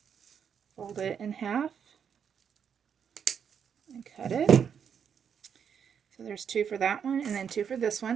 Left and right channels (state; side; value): quieter; left; 7.5 dB